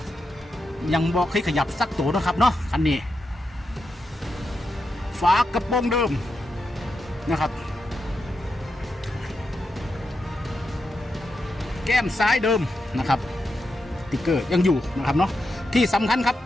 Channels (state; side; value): normal; both; correlation 0.86